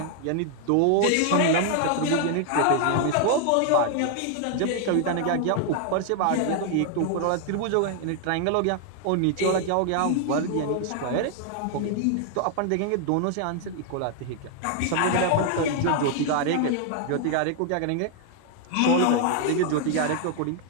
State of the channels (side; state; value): both; different; correlation 0.00